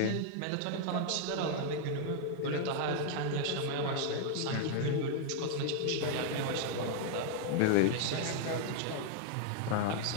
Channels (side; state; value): both; different; correlation 0.00